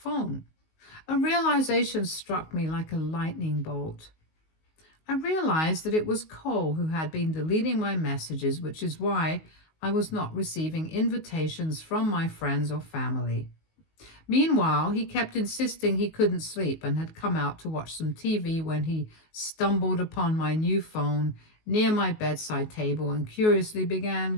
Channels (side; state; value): right; late; 19 ms